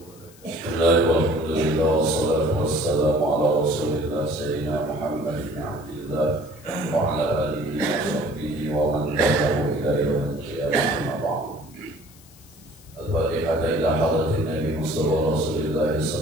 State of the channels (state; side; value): noise; left; hiss, 24 dB below the sound